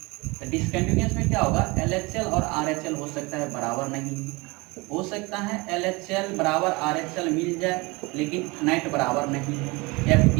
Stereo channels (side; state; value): left; quieter; 25.1 dB